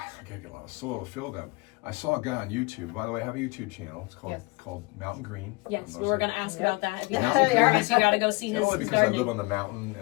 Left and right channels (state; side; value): quieter; right; 25.7 dB